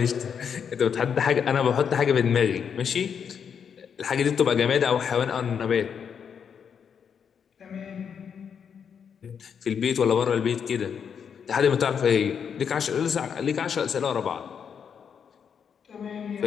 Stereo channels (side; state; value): right; quieter; 7.2 dB